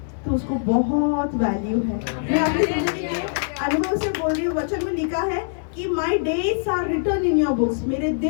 तो उसको बहुत वैल्यू है। मैं अपनी जिंदगी के अनुभव से बोल रही हूँ। वचन में लिखा है कि my days are return in your books, मेरे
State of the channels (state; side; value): silent; right; 64 dB below the other